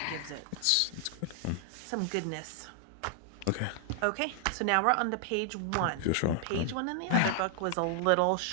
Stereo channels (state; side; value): different; both; correlation 0.00